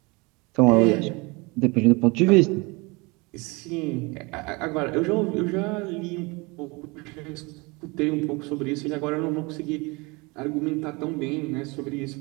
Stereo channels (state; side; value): quieter; left; 26.7 dB